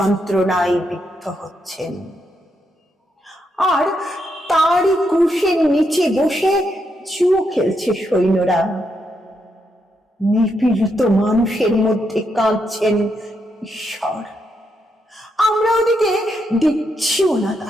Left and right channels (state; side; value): normal; both; correlation 0.80